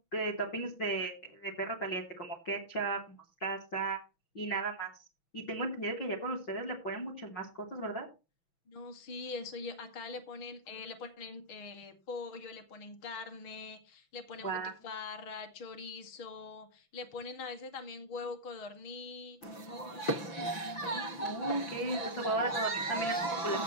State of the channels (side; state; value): right; late; 5.9 ms